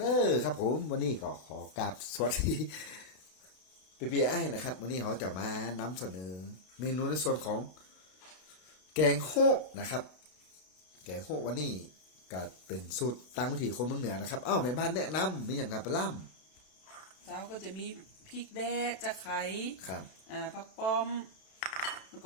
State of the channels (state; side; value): late; right; 32 ms